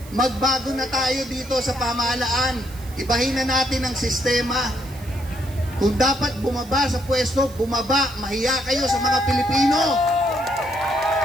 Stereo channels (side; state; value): right; noise; hiss, 21 dB below the sound